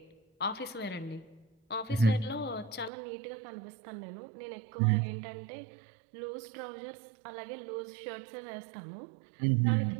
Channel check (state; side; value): drops out; left; at 2.9 s